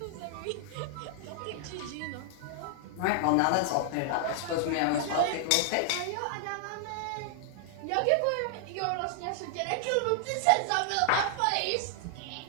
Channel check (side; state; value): both; different; correlation 0.00